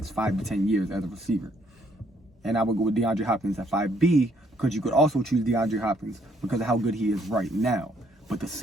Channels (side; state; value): both; normal; correlation 0.68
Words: 5 to 10 years as a receiver. And I would go with DeAndre Hopkins at 5B because you could also choose DeAndre Hopkins because of how good he is right now. But the